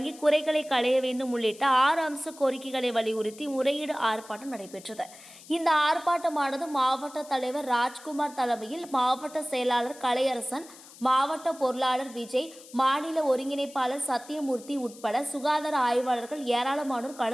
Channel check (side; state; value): left; noise; hiss, 20 dB below the sound